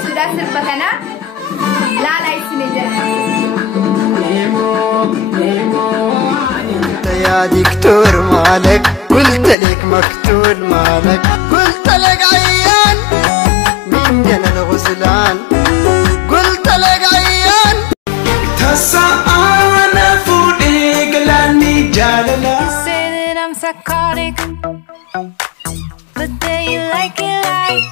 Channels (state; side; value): drops out; right; at 9.6 s